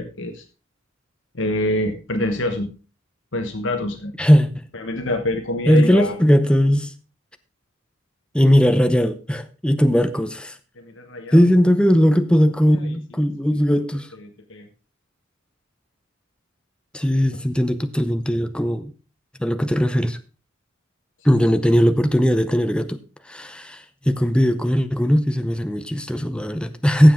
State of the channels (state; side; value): normal; both; correlation 0.92